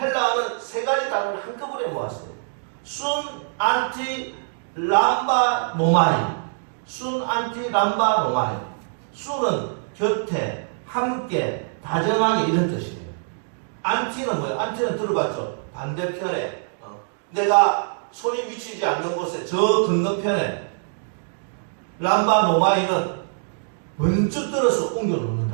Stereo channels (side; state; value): left; silent; digital silence